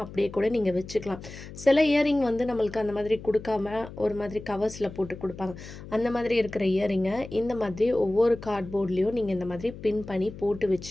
அப்படியே கூட நீங்கள் வச்சுக்கலாம். சில இயரிங் நம்மளுக்கு அந்த மாதிரி கொடுக்காம ஒரு மாதிரி கவர்ஸில் போட்டு கொடுப்பாங்க. அந்த மாதிரி இருக்கிற இயரிங்கை இந்த மாதிரி ஒவ்வொரு கார்ட்போர்ட்லேயும் நீங்கள் இந்த மாதிரி பின் பண்ணி போட்டு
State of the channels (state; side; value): noise; left; hum, 14 dB below the sound